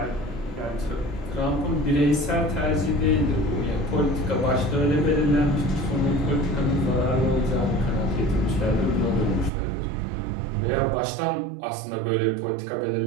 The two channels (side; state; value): left; drops out; at 9.5 s